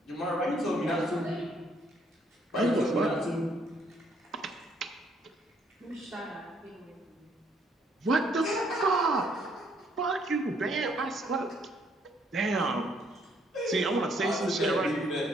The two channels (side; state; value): both; normal; correlation 0.67